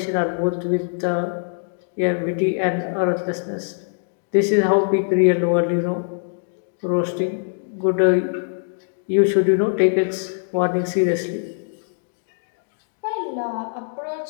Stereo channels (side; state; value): right; silent; digital silence